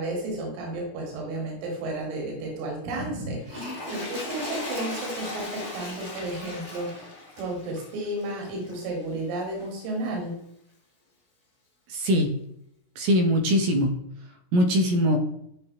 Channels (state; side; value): late; left; 17 ms